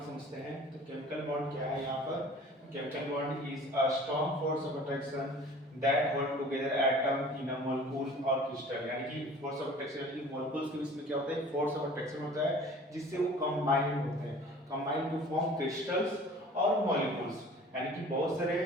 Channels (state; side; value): normal; both; correlation 0.46